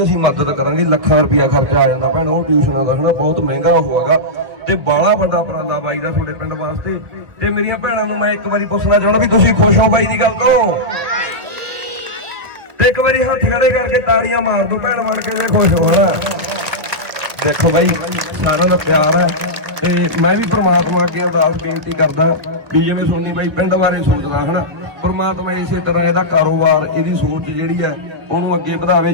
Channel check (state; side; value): late; left; 1.2 ms